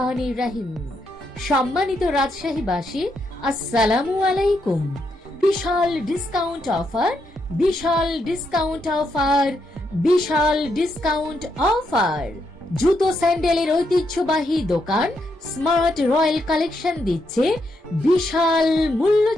রহিম। সম্মানিত রাজশাহীবাসী, আসসালামু আলাইকুম। বিশাল ডিসকাউন্ট অফার, বিশাল ডিসকাউন্ট অফার, বিশাল ডিসকাউন্ট অফার। জুতো স্যান্ডেলের ঐতিহ্যবাহী দোকান স্মার্ট রয়্যাল কালেকশন দিচ্ছে বিশাল মূল্য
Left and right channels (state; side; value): normal; both; correlation 0.80